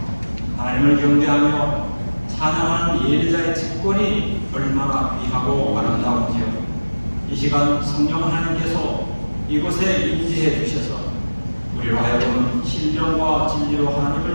하나님을 경배하며 찬양하는 예배자의 직권이 얼마나 귀하고 아름다운지요. 이 시간 성령 하나님께서 이곳에 임재해 주셔서 우리로 하여금 신령과 진리로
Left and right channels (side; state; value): both; inverted; correlation -1.00